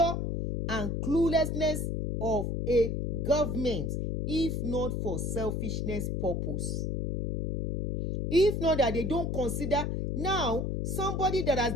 and cluelessness of a government, if not for selfishness purpose? If not that they don't consider now somebody that has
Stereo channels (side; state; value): left; noise; hum, 1 dB below the sound